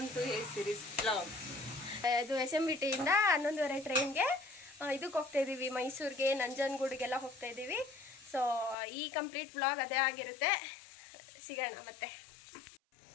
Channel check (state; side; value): drops out; right; at 8.8 s